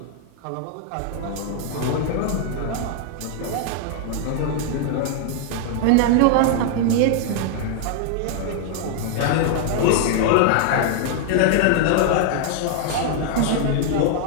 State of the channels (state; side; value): different; both; correlation -0.01